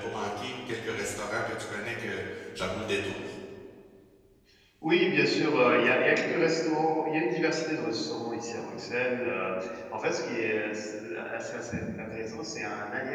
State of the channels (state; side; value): identical; both; correlation 1.00